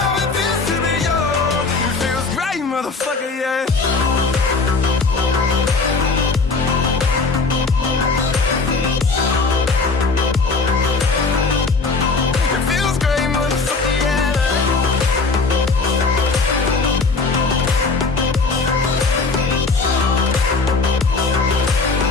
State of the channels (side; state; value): right; quieter; 4.1 dB